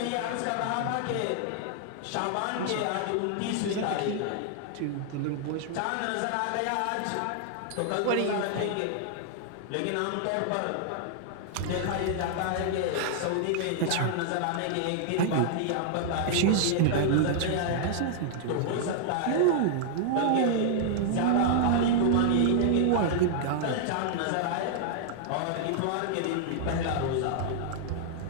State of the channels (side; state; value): both; different; correlation -0.01